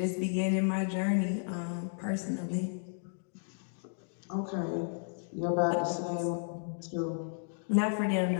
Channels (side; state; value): right; silent; digital silence